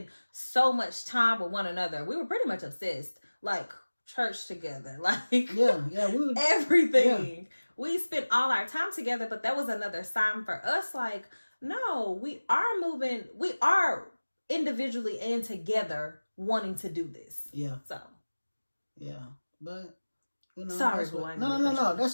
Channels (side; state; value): both; inverted; correlation -1.00